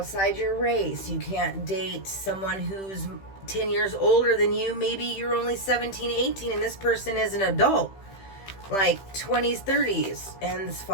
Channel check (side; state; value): right; late; 15 ms